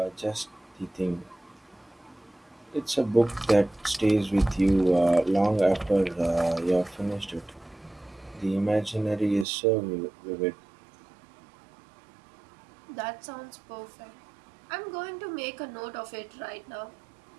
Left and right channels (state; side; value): drops out; left; at 9.5 s